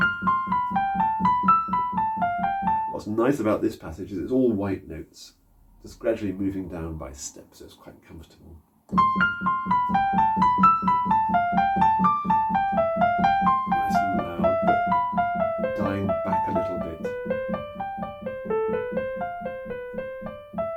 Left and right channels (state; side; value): identical; both; correlation 1.00